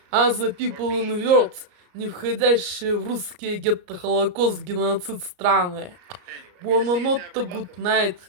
other people in the world, не входящие в русские гетто-холокост-геноцид страны. Buonanotte, good night.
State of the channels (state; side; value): late; left; 34 ms